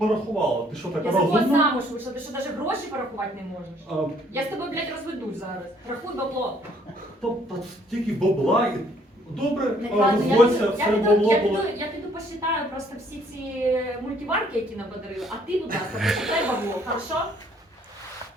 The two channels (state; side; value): normal; both; correlation 0.63